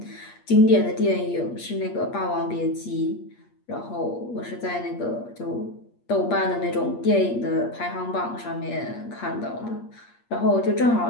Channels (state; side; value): late; right; 8.5 ms